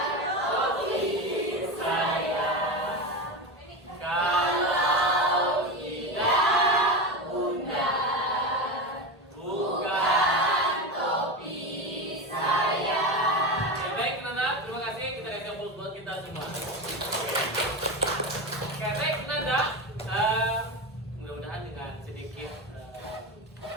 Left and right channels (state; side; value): normal; both; correlation 0.20